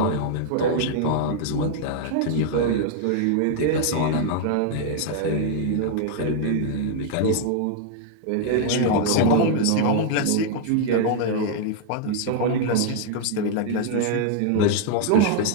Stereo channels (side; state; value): both; different; correlation -0.01